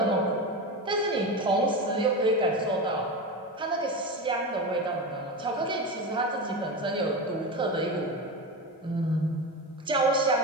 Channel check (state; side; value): normal; both; correlation 0.21